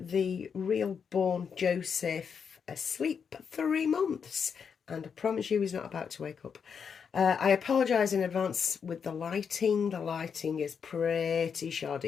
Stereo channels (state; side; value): quieter; right; 6.6 dB